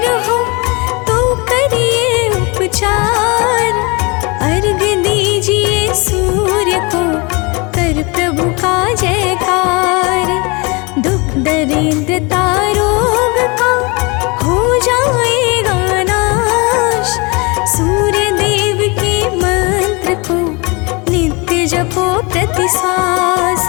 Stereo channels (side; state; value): right; quieter; 28.3 dB